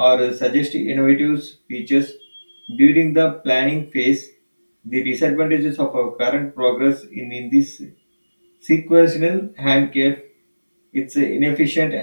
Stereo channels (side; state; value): both; inverted; correlation -1.00